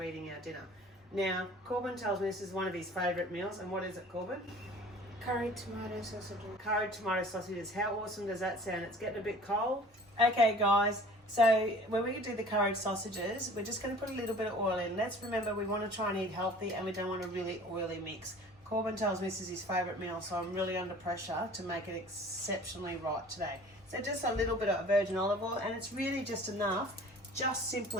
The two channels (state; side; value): normal; both; correlation 0.47